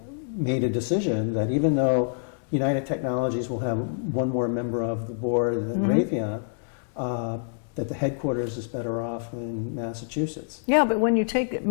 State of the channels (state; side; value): silent; right; digital silence